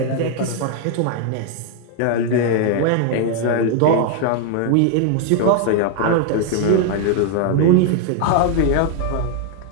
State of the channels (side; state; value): both; different; correlation 0.00